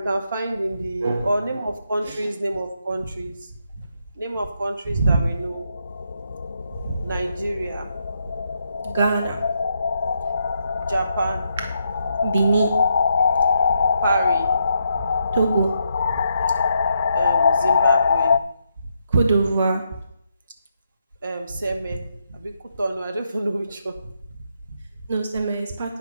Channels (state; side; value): inverted; both; correlation -0.80